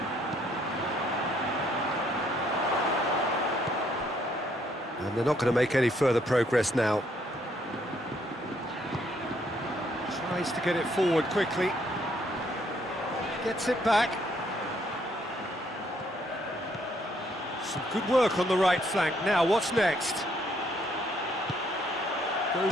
And they're not going to make any further progress now. Tries to get it forward quickly. Gets it back. Some good work on the right flank. Now, what's next?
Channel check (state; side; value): normal; both; correlation 0.69